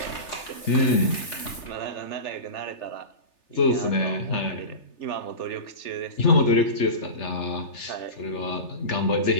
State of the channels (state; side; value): late; right; 3.3 ms